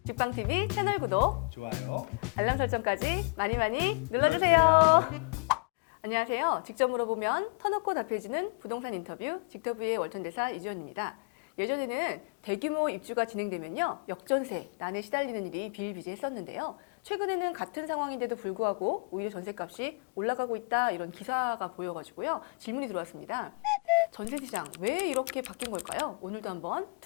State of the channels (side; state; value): right; quieter; 33.2 dB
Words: 직방TV 채널 구독, 좋아요. 알람 설정까지 많이 눌러주세요. 눌러주세요. 안녕하세요. 직접 물어보면 터놓고 답해주는 부동산 인터뷰 직터뷰의 월천대사 이주연입니다. 예전에는 대규모 입주가 진행되면요, 역전세, 난에 시달리는 일이 비일비재했었는데요. 최근에는 같은 상황인데도 불구하고 오히려 전세값이 올라가고 있다, 이런 기사가 보여가지고요, 질문이 들어왔습니다. 전세시장 왜 이렇게 바뀐 걸까요? 오늘도 한번